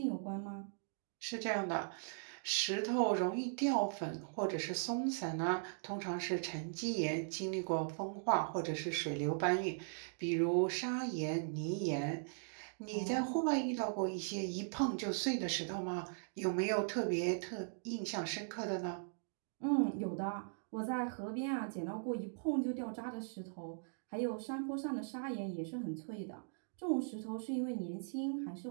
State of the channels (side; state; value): left; silent; digital silence